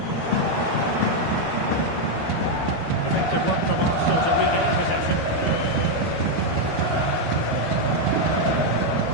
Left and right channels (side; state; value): right; late; 12 ms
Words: Effective work from Arsenal to regain possession.